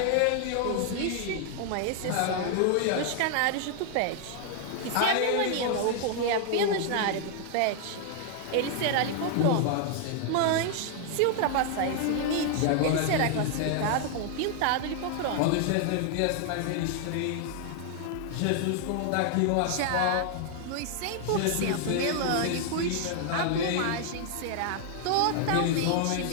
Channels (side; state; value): both; different; correlation 0.00